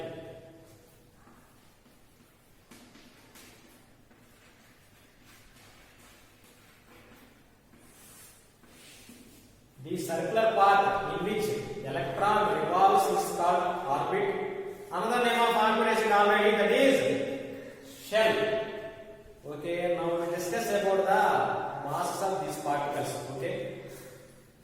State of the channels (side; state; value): both; identical; correlation 1.00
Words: The circular path in which electron revolves is called orbit. Another name of orbit is already, that is shell. Okay, now we discuss about the masses of these particles. Okay,